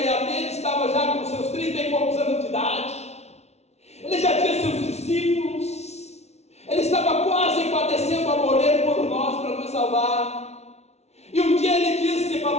ter, estava já com seus 30 e poucos anos de idade. Ele já tinha seus discípulos. Ele estava quase padecendo a morrer por nós, para nos salvar. E um dia ele disse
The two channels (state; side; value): late; right; 0.31 ms